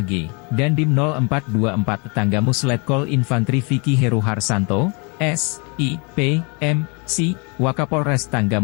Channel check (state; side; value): quieter; right; 32.1 dB